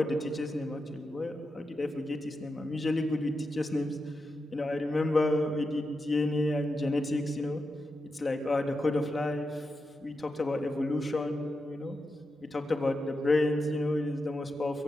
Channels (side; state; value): both; normal; correlation 0.88